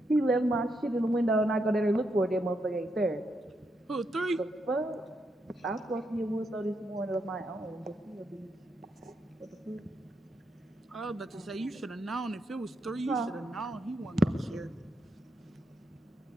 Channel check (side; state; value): both; normal; correlation 0.81